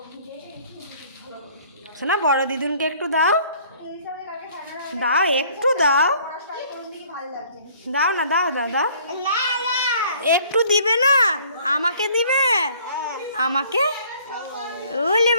শোনা বড় দিদুনকে একটু দাও দাও, একটু দাও দাও না, দাও দাও দাও, একটু দিবে না, আমাকে দিবে, আমাকে ওলে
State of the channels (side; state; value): both; inverted; correlation -0.56